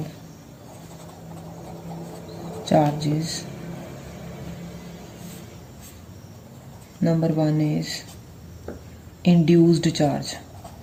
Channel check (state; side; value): identical; both; correlation 1.00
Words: charges. Number one is induced charge.